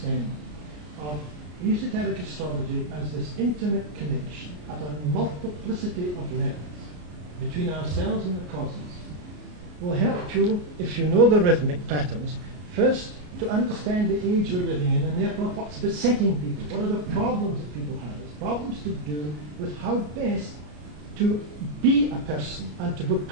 of esoteric astrology as this intimate connection at a multiplicity of levels between ourselves and the cosmos will help you, if you know the rhythmic patterns, first to understand the age we're living in, and therefore what's besetting people, what are the problems that people have. It's problems to do with how best to be a person and to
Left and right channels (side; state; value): left; late; 33 ms